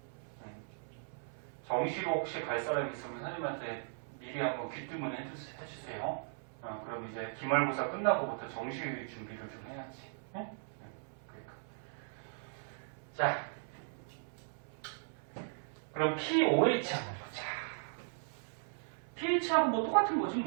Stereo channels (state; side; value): silent; left; 53 dB below the other